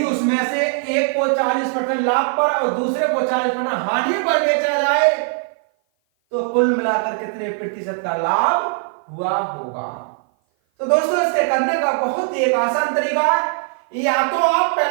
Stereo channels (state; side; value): silent; left; 56 dB below the other